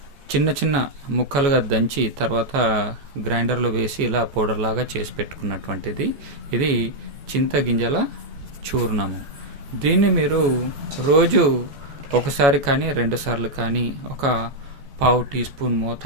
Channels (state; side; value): late; left; 14 ms